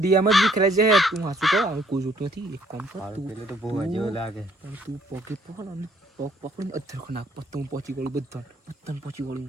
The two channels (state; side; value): normal; both; correlation 0.64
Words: એમ જ વિખરે છે તું હાસુ કહો હવે કોઈ જોતું નથી એક કામ કર તું પેલું તો બહુ જેવું લાગે પણ તું પગે પકડ અને પગ પકડીને અધર નાખ પત્તું પહોંચી ગયું બધાને પહોંચી